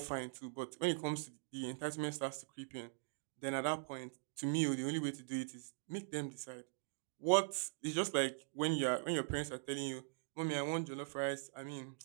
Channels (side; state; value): left; silent; digital silence